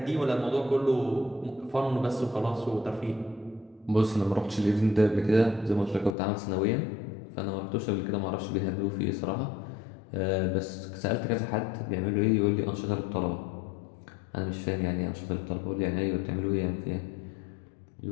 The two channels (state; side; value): drops out; right; at 6.2 s